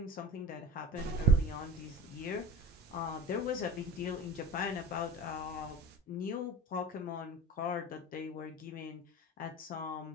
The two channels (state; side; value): normal; both; correlation 0.35